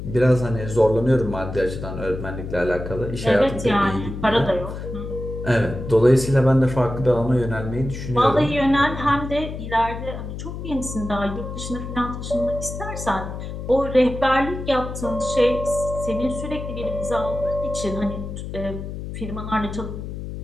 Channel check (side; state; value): left; noise; hum, 8 dB below the sound